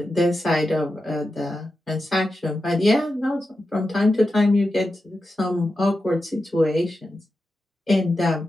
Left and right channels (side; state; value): both; normal; correlation 0.90